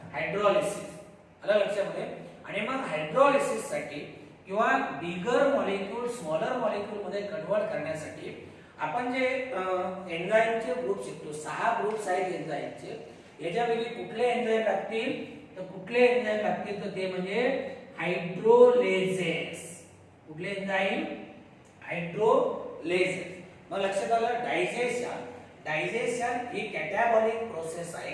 हायड्रॉलिसिस. आलं लक्षामध्ये? आणि मग हायड्रॉलिसिस साठी किंवा बिगर मॉलिक्यूल स्मॉलर मॉलिक्यूल मध्ये कन्वर्ट करण्यासाठी आपण जे एन्झाईमचे ग्रुप शिकतो, 6 ग्रुप्स आहेत एन्झाईमचे. याच्यापैकी कुठले एन्झाईम लागतील? तर कुठले एन्झाईम लागतील तर ते म्हणजे हायड्रोलेजेस. कुठले एन्झाईम? हायड्रोलेजेस. मग लक्षात आलं? डायजेशन, डायजेशन ही कॅटॅबॉलिक प्रोसेस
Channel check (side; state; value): both; identical; correlation 1.00